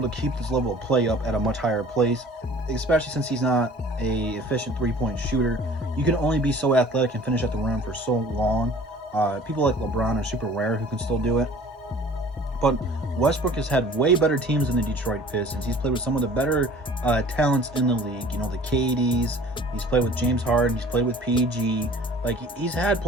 to keep this level of play up at a much higher pace, especially since he's not a efficient three-point shooter. You can only be so athletic and finish at the rim for so long. People like LeBron are super rare who can still do it. But Westbrook has had way better teams than the Detroit Pistons. He's played with some of the better talents in the league. You know, the KDs. He's played with James Harden. He's played with PG. Like, he's had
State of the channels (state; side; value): normal; both; correlation 0.48